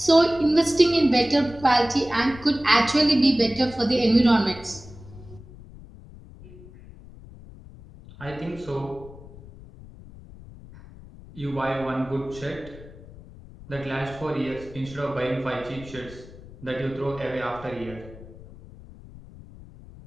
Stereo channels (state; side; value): noise; left; rumble, 18 dB below the sound